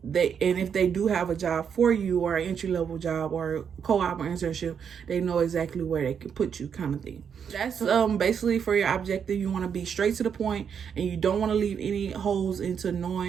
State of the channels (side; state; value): left; quieter; 7.4 dB